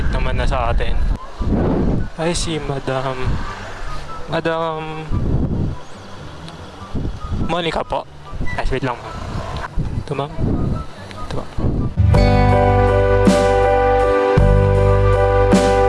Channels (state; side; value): identical; both; correlation 1.00